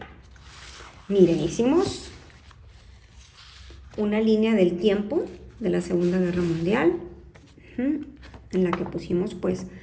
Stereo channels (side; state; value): both; identical; correlation 1.00